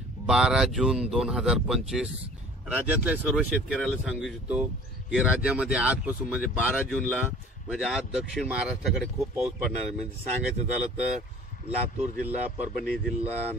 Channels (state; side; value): normal; both; correlation 0.47